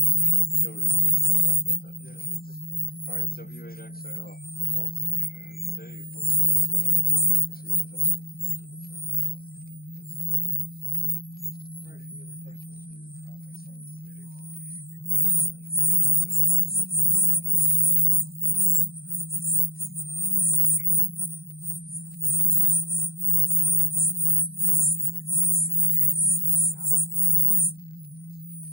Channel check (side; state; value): right; late; 0.43 ms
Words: noted. We'll talk about that today. Yeah, sure thing. All right, W8XAL, welcome. And Dave, what's your question or comment this evening? Go ahead. All right, any other questions or comments on the day? Go ahead and key up and set your pulse and we'll move on to the next part.